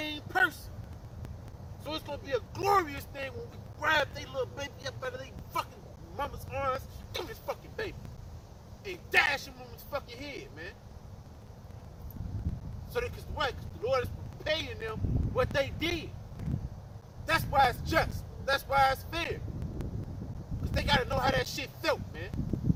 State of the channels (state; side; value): identical; both; correlation 1.00